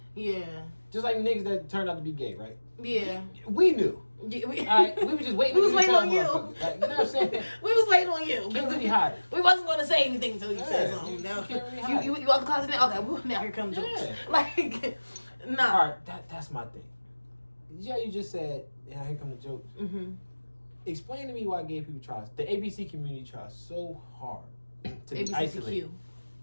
Yeah, Just like niggas that turned out to be gay, right? yeah. We knew. Yeah, we, Alright, we were just waiting. We was to waiting tell on you. motherfuckers. Like, you know what I'm saying? we was waiting on you. Can't really hide it. We wasn't gonna say anything until you said Yeah, something. you No. can't really hide You out the closet now? Okay, well, now here comes jokes. Yeah. Like, nah. All right, that's my thing. Yeah, you just said, yeah, here come the jokes. Mm-hmm. Explain to me why gay people try, the ABC community tries so hard to be isolated,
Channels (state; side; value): inverted; both; correlation -1.00